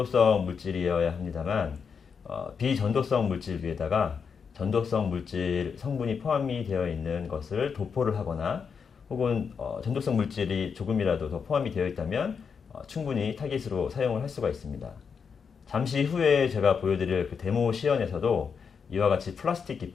물질이어야 합니다만 비전도성 물질 위에다가 전도성 물질 성분이 포함이 되어 있는 것을 도포를 하거나 혹은 전도성 물질이 조금이라도 더 포함이 되어 있다면 충분히 타깃으로 사용을 할 수가 있습니다. 잠시 후에 제가 보여드릴 그 데모 시연에서도 이와 같이 플라스틱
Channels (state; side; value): quieter; right; 6.2 dB